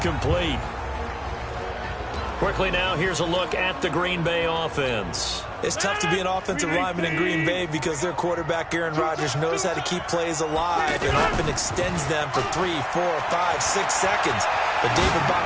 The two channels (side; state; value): both; identical; correlation 1.00